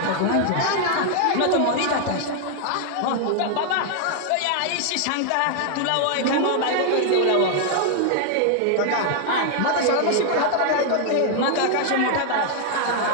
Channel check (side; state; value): both; different; correlation 0.00